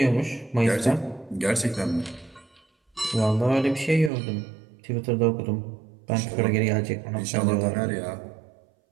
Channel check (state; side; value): drops out; left; at 4.1 s